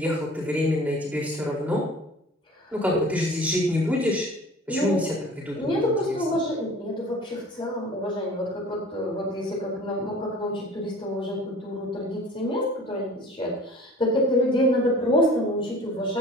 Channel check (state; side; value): normal; both; correlation 0.45